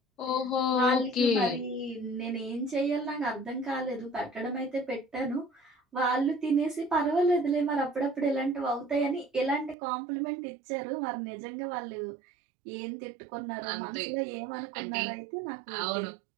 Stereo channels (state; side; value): drops out; left; at 9.8 s